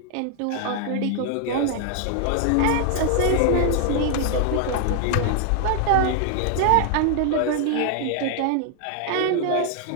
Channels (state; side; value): different; both; correlation 0.00